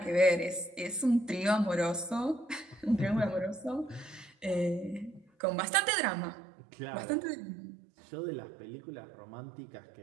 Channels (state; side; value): drops out; left; at 5.2 s